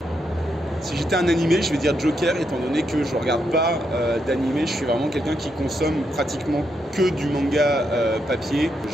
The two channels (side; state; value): both; normal; correlation 0.80